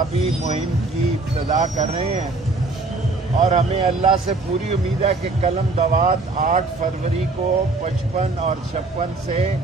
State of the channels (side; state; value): left; quieter; 3.4 dB